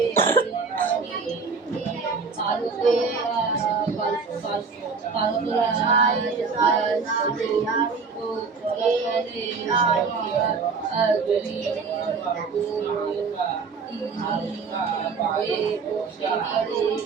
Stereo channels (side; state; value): left; quieter; 5.0 dB